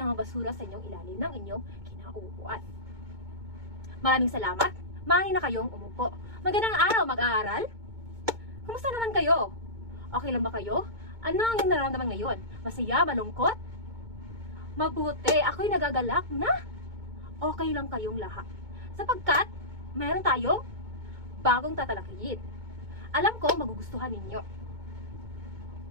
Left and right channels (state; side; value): late; left; 2.2 ms